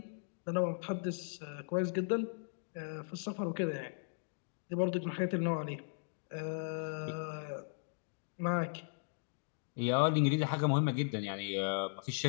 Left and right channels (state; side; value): silent; right; digital silence